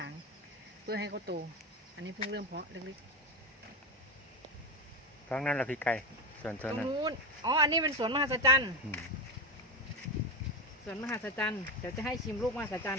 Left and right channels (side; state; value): both; normal; correlation 0.16